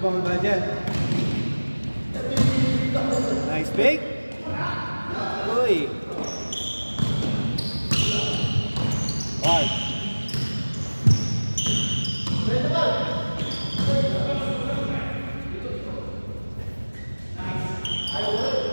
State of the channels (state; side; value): inverted; both; correlation -1.00